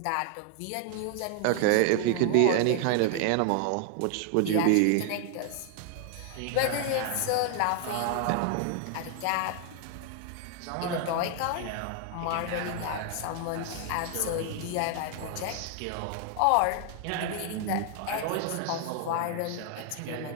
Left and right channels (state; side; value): different; both; correlation 0.00